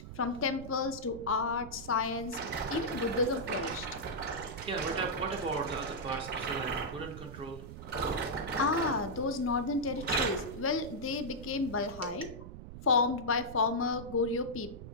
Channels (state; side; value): noise; right; rumble, 12 dB below the sound